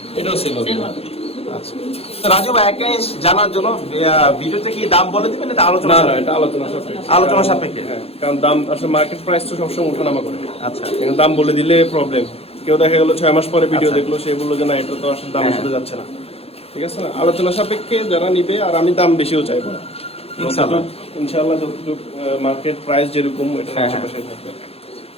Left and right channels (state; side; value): late; right; 0.29 ms